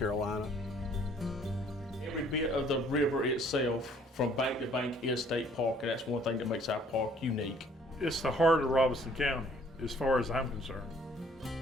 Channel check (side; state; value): both; normal; correlation 0.59